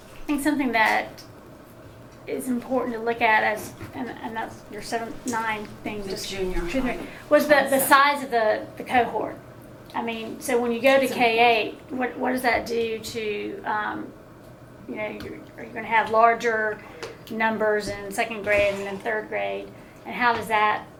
think something that is important to look at as, and that's your 7-9 thing, The just junior high was the size of the cohort. So when you go to K8, what does that do to, are you going to have larger numbers in 2nd grade and then 3rd grade, and how does that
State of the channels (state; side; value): identical; both; correlation 1.00